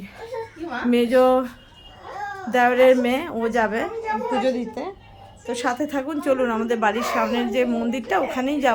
মেজো দেওরের মেয়ে, ও যাবে পুজো দিতে। তো সাথে থাকুন, চলুন আমাদের বাড়ির সামনের যে মন্দিরটা ওখানেই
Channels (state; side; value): identical; both; correlation 1.00